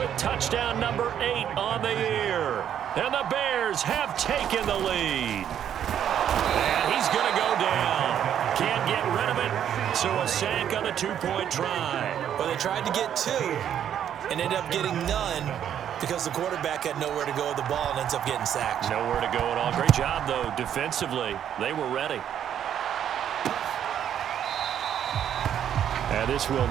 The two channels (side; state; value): left; quieter; 9.7 dB